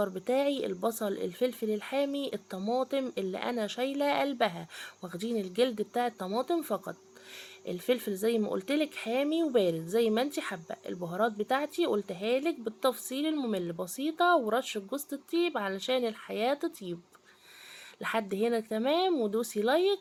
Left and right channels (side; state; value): both; identical; correlation 1.00